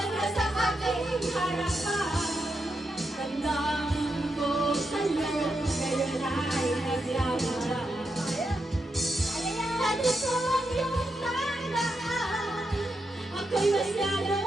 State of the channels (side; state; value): both; normal; correlation 0.84